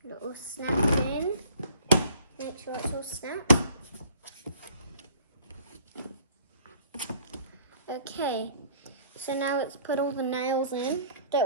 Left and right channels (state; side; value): inverted; both; correlation -0.55